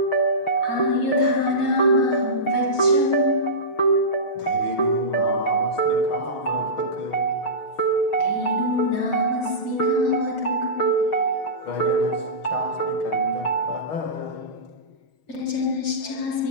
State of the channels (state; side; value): late; right; 6.3 ms